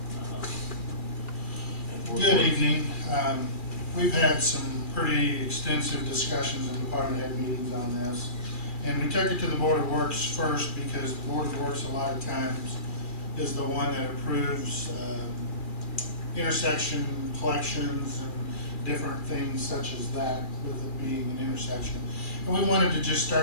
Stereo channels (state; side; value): late; right; 2.4 ms